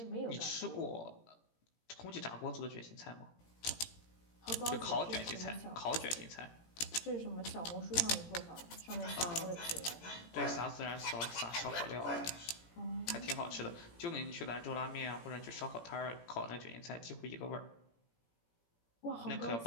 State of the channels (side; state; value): right; late; 17 ms